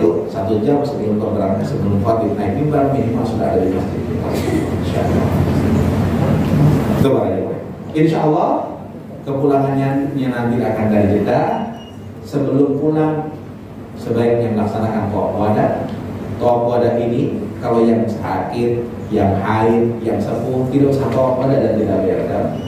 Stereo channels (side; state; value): both; identical; correlation 1.00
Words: 1 jam sebelum berangkat sebelum khatib naik mimbar minimal sudah ada di masjid. Insya Allah. Itu baru. Insya Allah kepulangannya nanti akan dari Jeddah. Sebelum pulang sebaiknya melaksanakan tawaf wada. Tawaf wada ini kalau yang sakit, yang haid, yang sepuh tidak usah tawaf wada dan tidak bayar.